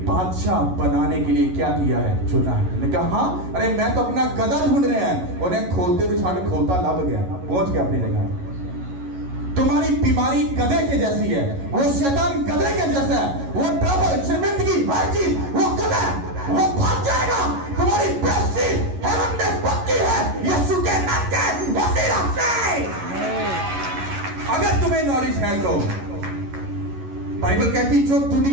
बादशाह बनाने के लिए क्या किया है? चुना है। उसने कहा हाँ, अरे मैं तो अपना गधा ढूंढ रहे हैं। उन्हें खोलते तो छाने खोलता लग गया, पहुंच गया अपनी जगह। तुम्हारी बीमारी गधे के जैसी है, वो शैतान गधे के जैसा है, वो ट्रबल, शर्मिंदगी, हर चीज वो गधा, वो भाग जाएगा। तुम्हारी बेइज्जती हेवन में पक्की है, यीशु के नाम के वसीला से। अगर तुम्हें नॉलेज है तो बाइबल कहती जो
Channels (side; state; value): left; late; 11 ms